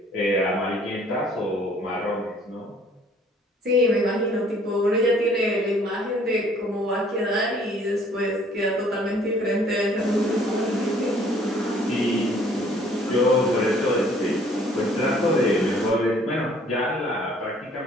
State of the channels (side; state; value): both; normal; correlation 0.58